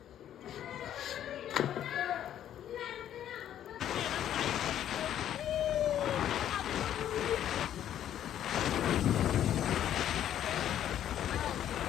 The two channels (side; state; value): right; quieter; 10.9 dB